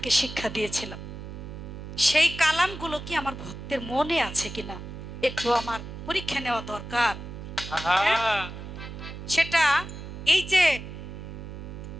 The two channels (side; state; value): right; noise; hum, 10 dB below the sound